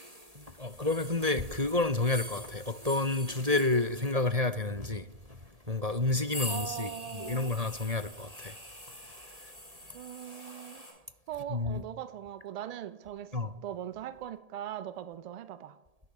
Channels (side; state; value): left; late; 1.8 ms